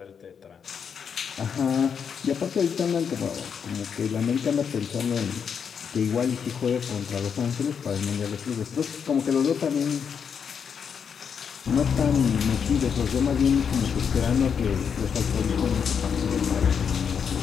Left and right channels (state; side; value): quieter; right; 7.0 dB